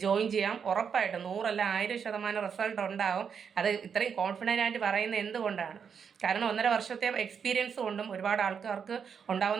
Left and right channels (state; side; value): quieter; left; 6.9 dB